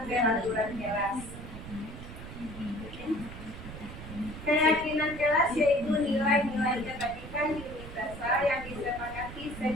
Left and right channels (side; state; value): right; noise; rumble, 11 dB below the sound